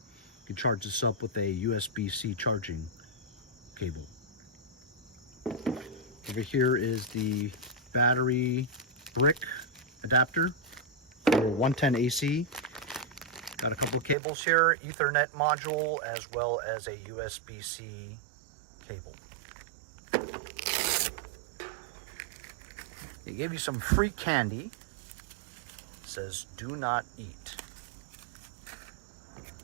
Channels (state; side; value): drops out; left; at 14.2 s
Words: You can charge this up with a USB-C charging cable. Over here is the battery brick adapter for 110 AC. Got a couple of cables here, Ethernet module, as well as a USB-C cable. They gave you some free candy. It says, "Do not eat."